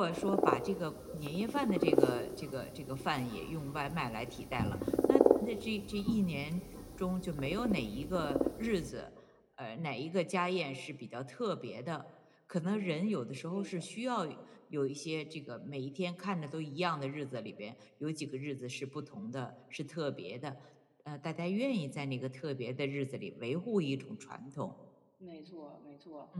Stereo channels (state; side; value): identical; both; correlation 1.00